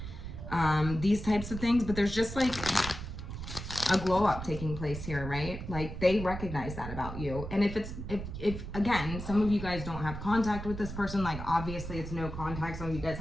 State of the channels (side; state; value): right; noise; rumble, 8 dB below the sound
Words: these types of things. But there's just like a glow up taking place here, right? Like, they recognize that about you. And if again, some of you guys don't have contact with this person, like obviously it's no contact. Some of you guys